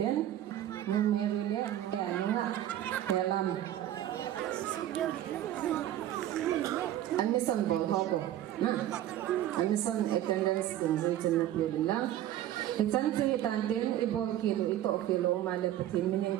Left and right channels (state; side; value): quieter; left; 12.5 dB